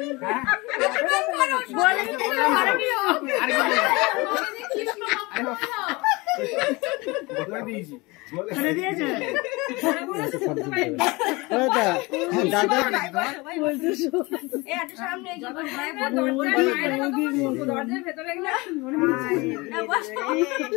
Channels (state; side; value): quieter; right; 24.3 dB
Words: বলে দিয়েছি এই একটু সামনে এগিয়ে বসো। দরজার ভেতরে গেলে বসো।